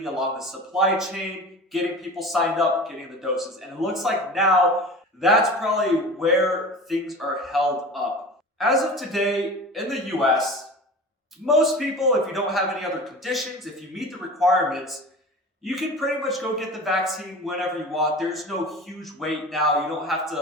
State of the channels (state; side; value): normal; both; correlation 0.36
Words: along the supply chain, getting people signed up, getting the doses. And it looks like now that's probably where things are held up. As of today in the US, most people, if you don't have any other conditions, if you meet the requirements, you can pretty much go get the vaccine whenever you want. There's no huge wait now. You don't have